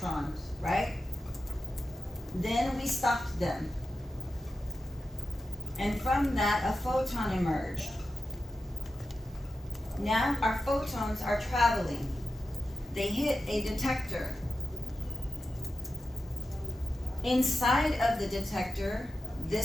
right? Then we stopped them. And from that, a photon emerged. Now our photons are traveling. They hit a detector. Inside of the detector,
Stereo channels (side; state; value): both; normal; correlation 0.91